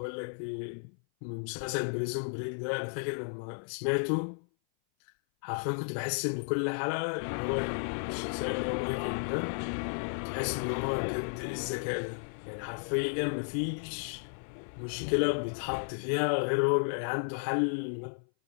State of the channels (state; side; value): silent; right; 56 dB below the other